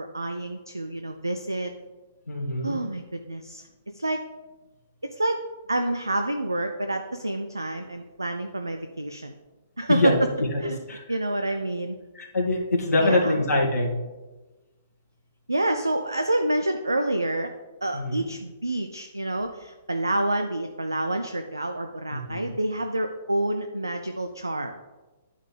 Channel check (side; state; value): both; inverted; correlation -0.82